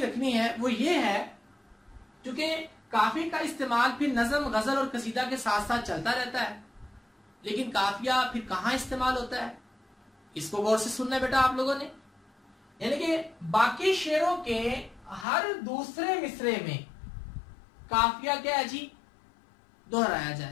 रखनी है वो ये है, क्योंकि काफिया का इस्तेमाल फिर नज़म, गजल और कसीदा के साथ साथ चलता रहता है, लेकिन काफिया फिर कहां इस्तेमाल होता है, इसको गौर से सुनना है बेटा आप लोगों ने। यानी कि बाकी शेरों के हर दूसरे मिसरे में काफिया क्या है जी दोहराया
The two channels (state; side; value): drops out; right; at 15.2 s